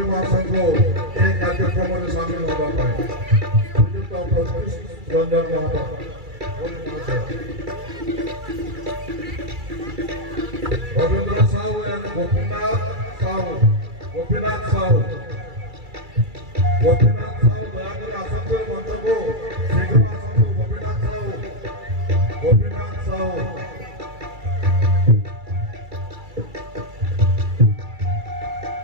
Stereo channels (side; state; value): left; late; 2.3 ms